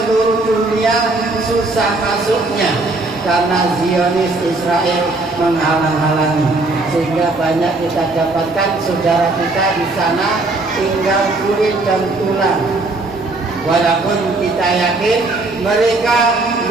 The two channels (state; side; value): quieter; left; 3.1 dB